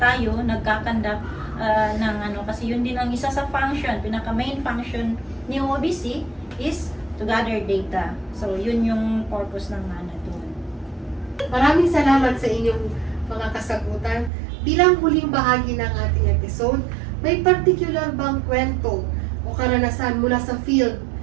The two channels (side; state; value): left; drops out; at 14.3 s